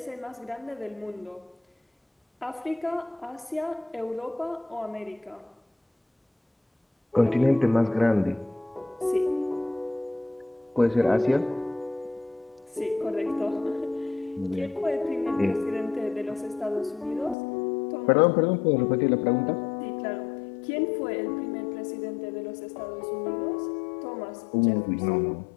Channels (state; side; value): drops out; right; at 17.4 s